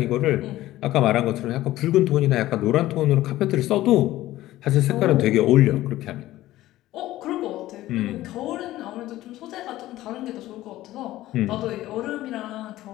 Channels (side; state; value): right; quieter; 15.6 dB